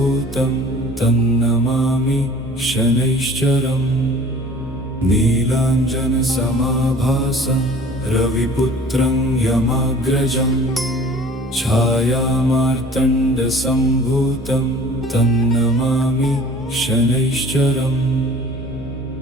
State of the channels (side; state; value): both; normal; correlation 0.47